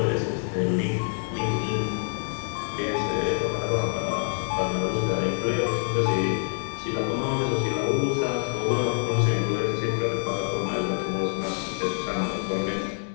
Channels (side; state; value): right; silent; digital silence